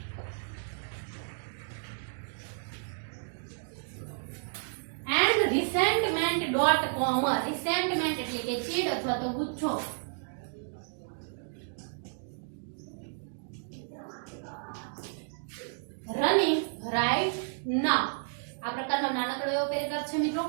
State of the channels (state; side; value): silent; left; digital silence